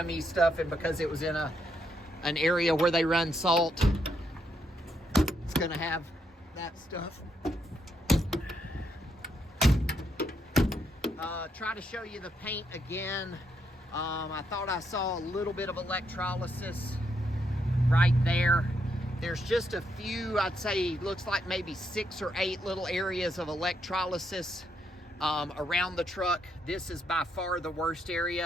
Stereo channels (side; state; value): both; normal; correlation 0.78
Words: stuff, and because it was in an area where they run salt, it's gonna have that stuff. Try to show you the paint again. I thought I saw a little bit of electrolysis right there. There's just a few, I'd say, looks like maybe 6 or 8 little areas of electrolysis around the truck. This is by far the worst